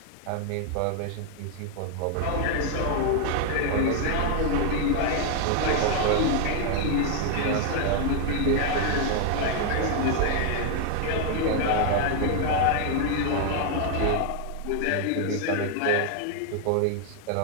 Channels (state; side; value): different; both; correlation 0.00